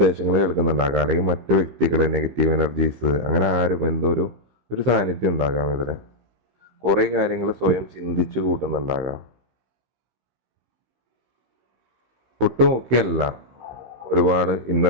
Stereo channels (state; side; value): late; left; 16 ms